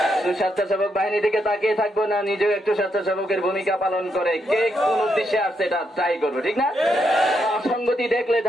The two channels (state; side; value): normal; both; correlation 0.80